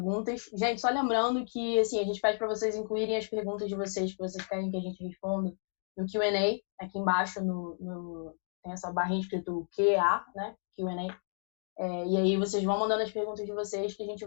Gente, só lembrando que assim, a gente pede para vocês incluírem as perguntas de vocês que vocês querem que a gente responda no Q&A. Aqui embaixo tem essa barrinha escrito QA, né? Q&A. E aí vocês vão mandando as perguntas de vocês que a gente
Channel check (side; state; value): right; silent; digital silence